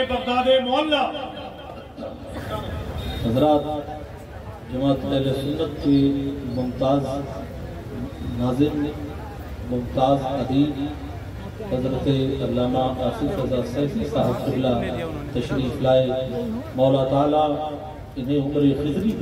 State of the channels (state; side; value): identical; both; correlation 1.00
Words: بغداد معلیٰ حضرات، جماعت اہل سنت کی ممتاز ناظم، ممتاز ادیب حضرت علامہ آصف رضا سیفی صاحب قبلہ تشریف لائے، مولا تعالیٰ انہیں عمر خضری